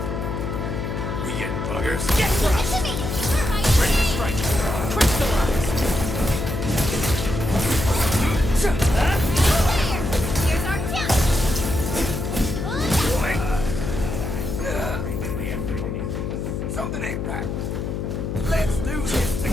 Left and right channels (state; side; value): noise; left; hum, 3 dB below the sound